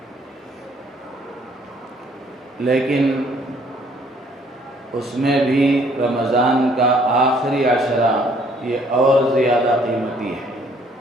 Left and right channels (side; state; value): both; normal; correlation 0.62